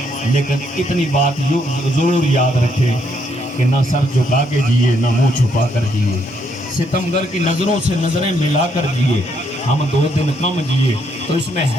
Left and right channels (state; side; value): normal; both; correlation 0.73